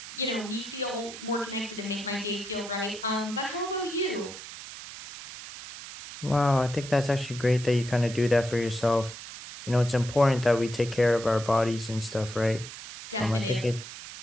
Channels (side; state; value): right; noise; hiss, 12 dB below the sound